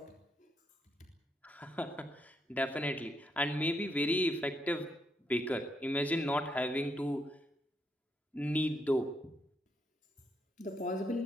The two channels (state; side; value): normal; both; correlation 0.78